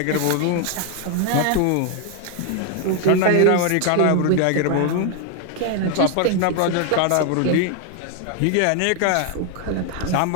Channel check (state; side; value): different; both; correlation 0.01